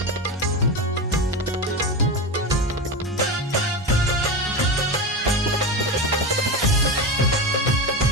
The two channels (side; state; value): both; normal; correlation 0.21